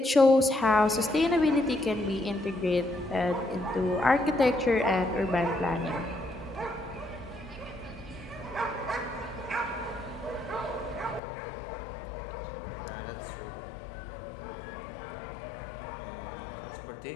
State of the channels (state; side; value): drops out; right; at 11.2 s